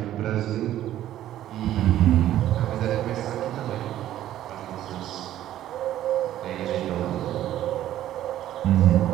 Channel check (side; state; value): left; quieter; 12.7 dB